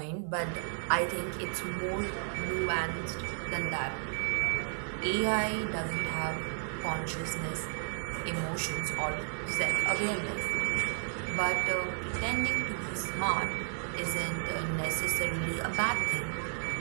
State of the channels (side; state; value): left; silent; digital silence